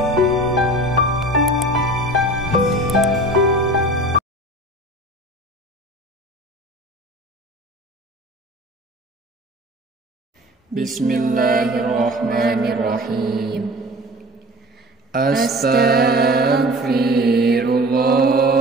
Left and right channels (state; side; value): normal; both; correlation 0.40